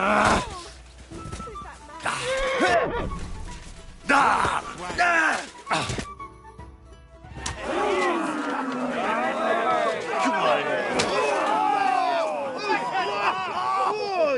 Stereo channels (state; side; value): identical; both; correlation 1.00